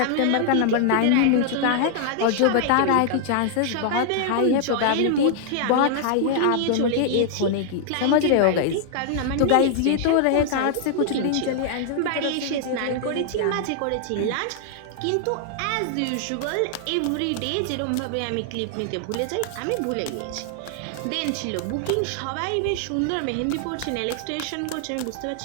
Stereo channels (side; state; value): both; different; correlation 0.00